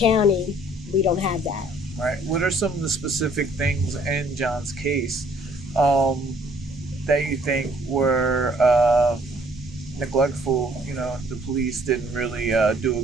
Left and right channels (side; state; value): both; normal; correlation 0.60